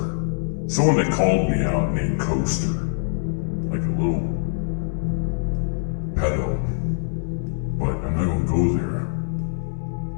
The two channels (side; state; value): right; silent; digital silence